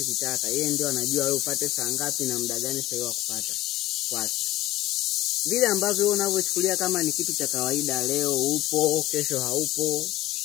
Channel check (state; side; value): quieter; right; 16.3 dB